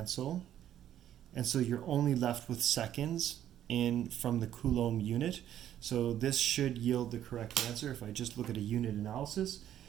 and so you're only left with seconds from the Coulomb unit. So this should yield the correct answer if I just look at a unit analysis,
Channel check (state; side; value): quieter; left; 11.2 dB